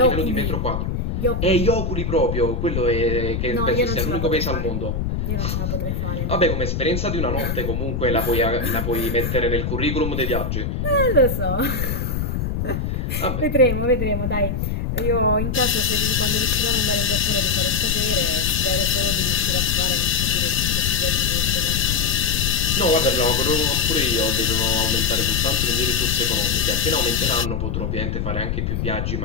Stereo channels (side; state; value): left; noise; rumble, 1 dB below the sound